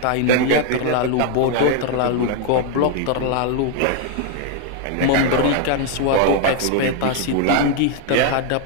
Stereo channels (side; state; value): both; different; correlation 0.00